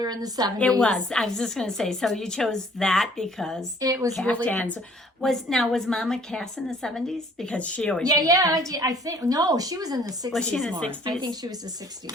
in the 70s. It was. I was just going to say, so you chose that because It was really. caftans. Was Mama Cass in the 70s? Because she always wore Yeah. caftans. I think no, she was in the 60s. Was she in the more. 60s? I think she was the 60s.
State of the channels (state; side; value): normal; both; correlation 0.57